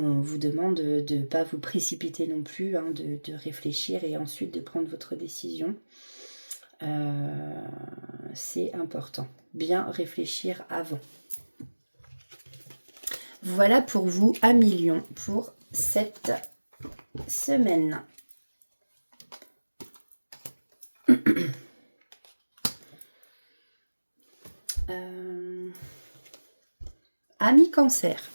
vous demande de ne pas vous précipiter non plus, hein, de réfléchir et ensuite de prendre votre décision. C'est important. Bien réfléchir avant. Voilà pour vous, amis lions, pour cette semaine. Amis cancer,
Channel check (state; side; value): inverted; both; correlation -1.00